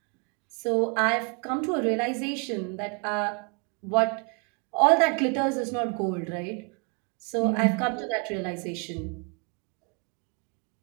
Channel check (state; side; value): quieter; left; 36.4 dB